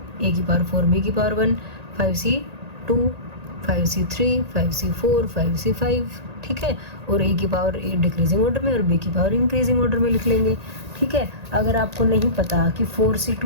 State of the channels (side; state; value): left; late; 1.8 ms